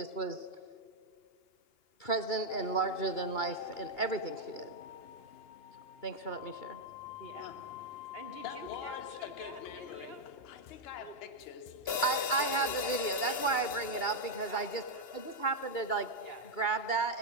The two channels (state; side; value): late; right; 2.9 ms